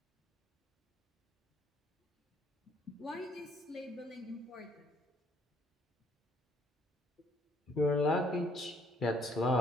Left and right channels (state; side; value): normal; both; correlation 0.64